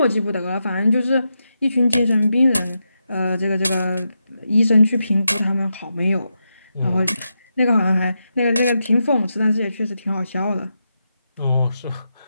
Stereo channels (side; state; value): both; inverted; correlation -0.86